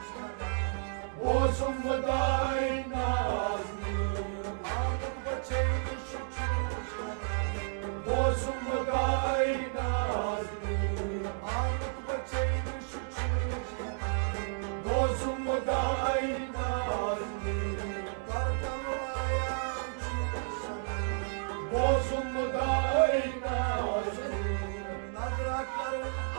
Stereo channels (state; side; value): silent; left; digital silence